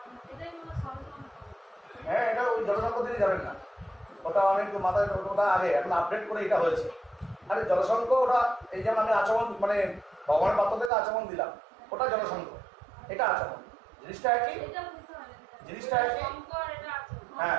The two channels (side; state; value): left; drops out; at 10.9 s